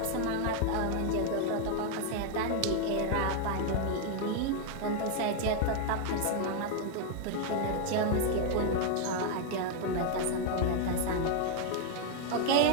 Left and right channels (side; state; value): both; different; correlation 0.00